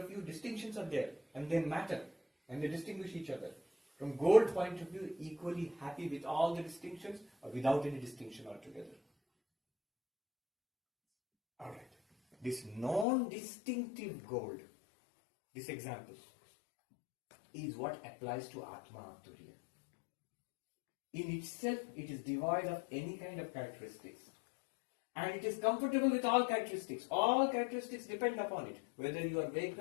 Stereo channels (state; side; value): drops out; right; at 13.1 s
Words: view, distinctions are there and they matter and they distinguish each other. From gold point of view, equally happy with all the distinctions or without any distinction altogether. Alright. This non-distinctive gold, this example, is what applies to Atma Turiya. In itself, it is devoid of any kind of characteristics. And it is comfortable with all characteristics. All characteristics depend upon it. Whether you are